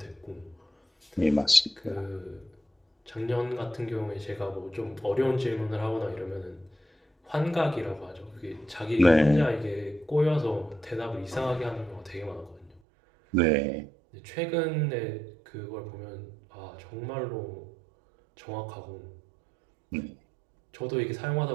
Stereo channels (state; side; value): drops out; left; at 12.8 s